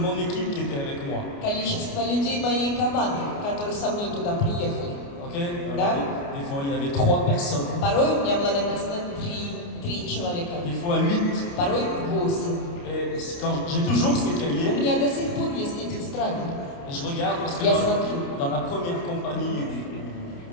équipe qui étaient avec moi. количество людей моей команды, которые со мной туда приехали. Ok. Да. Alors, des fois il y avait 3 personnes, Порой у меня было написано три человека, des fois 8. порой 8. Et quand j'ai toujours ces У cahiers, меня до сих пор есть эти тетради. et je regarde parce que Я смотрю. dans la première compagnie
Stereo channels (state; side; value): late; right; 29 ms